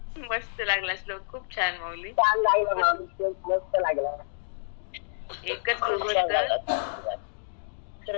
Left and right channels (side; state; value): right; silent; digital silence